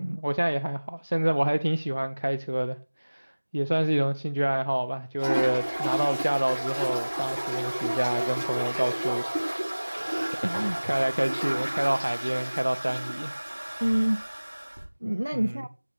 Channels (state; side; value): inverted; both; correlation -1.00